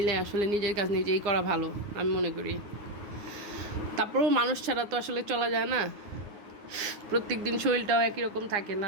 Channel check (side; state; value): left; late; 9.6 ms